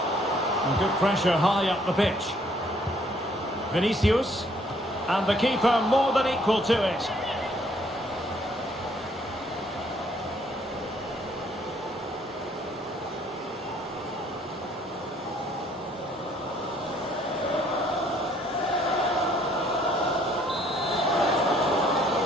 And good pressure high up the pitch. Vinicius. And the keeper more than equal to it.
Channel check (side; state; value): both; normal; correlation 0.63